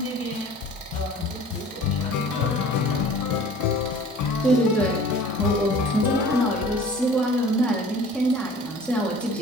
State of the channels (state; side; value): normal; both; correlation 0.45